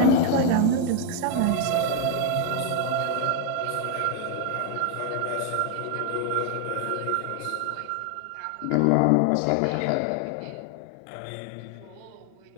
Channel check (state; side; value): different; both; correlation 0.00